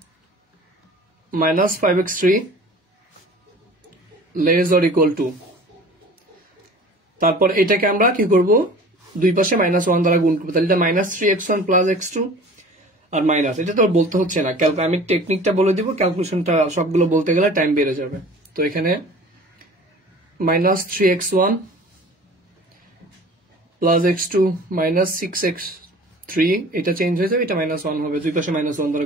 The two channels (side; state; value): both; normal; correlation 0.44